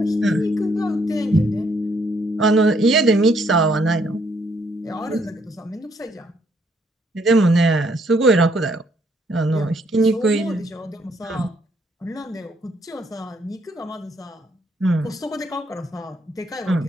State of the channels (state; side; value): normal; both; correlation 0.70